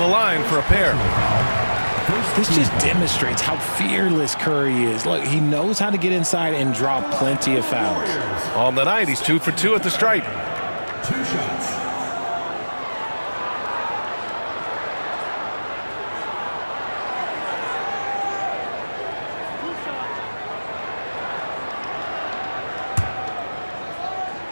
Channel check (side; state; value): both; inverted; correlation -1.00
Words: line for a pair. This just demonstrates how fearless Curry is. Look, he knows how to get inside and draw plenty of fouls. On the night, he's 2 for 2 at the stripe. 2 shots.